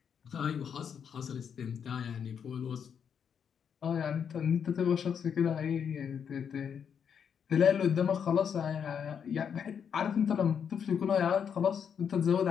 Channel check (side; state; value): right; quieter; 7.5 dB